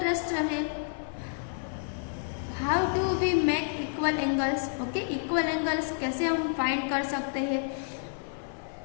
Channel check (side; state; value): right; silent; 58 dB below the other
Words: है how do we make equal angles. Okay, equal angles कैसे हम फाइंड कर सकते हैं।